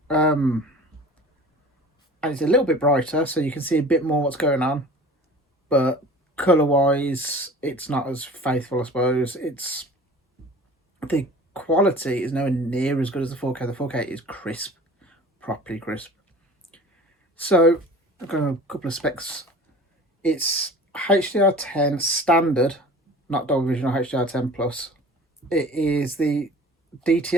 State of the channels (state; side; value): normal; both; correlation 0.43